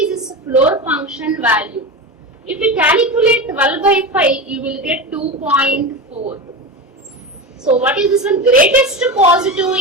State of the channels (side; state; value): both; normal; correlation 0.23